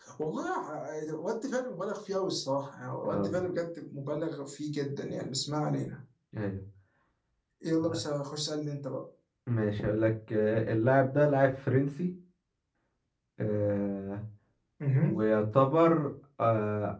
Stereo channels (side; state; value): both; identical; correlation 1.00